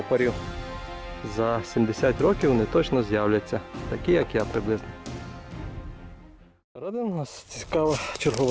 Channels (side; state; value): both; identical; correlation 1.00